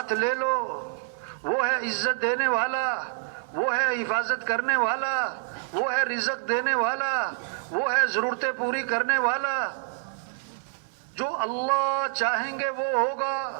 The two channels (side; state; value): left; silent; 59 dB below the other